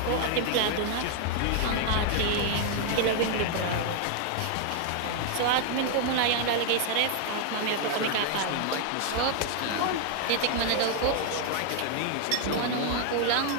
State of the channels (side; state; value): both; different; correlation 0.00